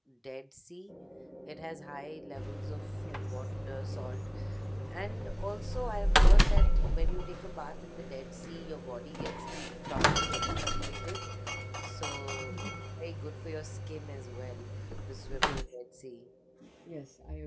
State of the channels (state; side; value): identical; both; correlation 1.00